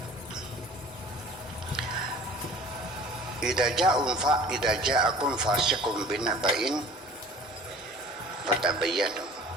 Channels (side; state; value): both; normal; correlation 0.45